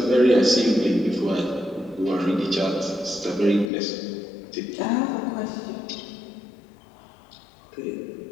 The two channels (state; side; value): drops out; right; at 3.7 s